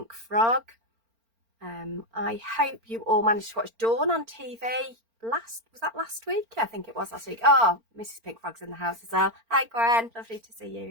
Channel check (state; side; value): late; left; 4.4 ms